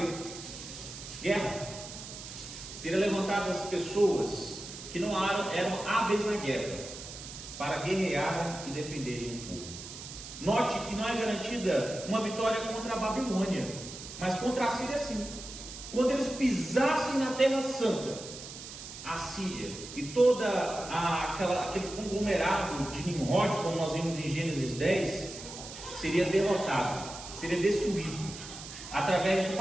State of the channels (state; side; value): noise; right; hiss, 12 dB below the sound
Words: guerra. Seriam levantadas pessoas que não eram hábeis na guerra, para guerrear e defenderem o povo. Note que não é garantida uma vitória contra a Babilônia, mas contra a Síria sim. quando eles pisassem na Terra Santa, a Síria e todo aquele conglomerado de Nimrod, como nós vimos em Gênesis 10, seria derrotado, seria destruído, através de